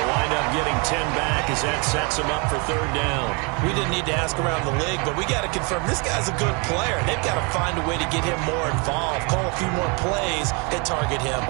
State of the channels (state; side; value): quieter; left; 30.9 dB